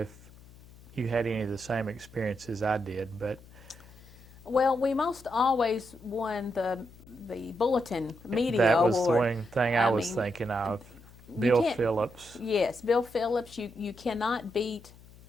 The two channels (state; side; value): noise; left; hum, 22 dB below the sound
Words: you had any of the same experiences I did, but Well, we most always won the bulletin media that was award. the one thing I was mean, thinking of. you Bill can't. Phillips. Yes, Bill Phillips. You cannot beat